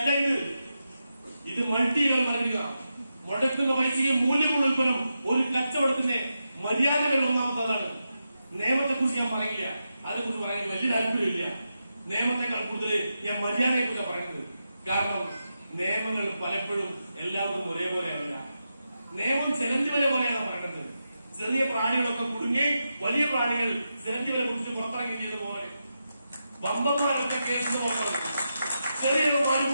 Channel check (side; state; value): both; inverted; correlation -0.88